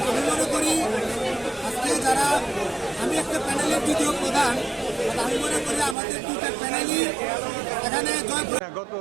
আমি মনে করি আজকে যারা, আমি একটা প্যানেলের দ্বিতীয় প্রধান, আমি মনে করি আমাদের দুটো প্যানেলই এখানে গত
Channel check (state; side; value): drops out; left; at 6.0 s